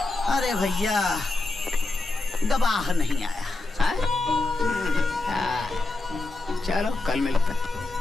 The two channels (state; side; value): quieter; right; 3.1 dB